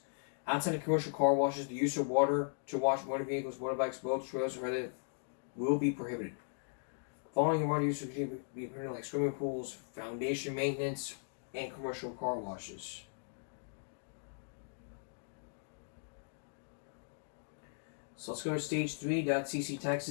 Outside of commercial car washes, the use of water to wash motor vehicles, motorbikes, boats, trails, and other will be prohibited. Following water use would be permitted like swimming pools, foundation maintenance, and commercial car washes. So let's go to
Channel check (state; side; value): silent; right; digital silence